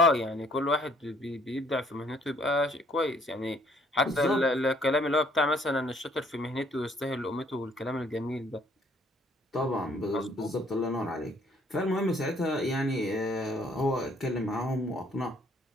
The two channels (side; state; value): both; normal; correlation 0.62